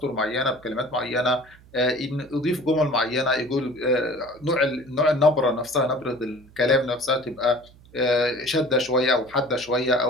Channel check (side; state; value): right; noise; hum, 25 dB below the sound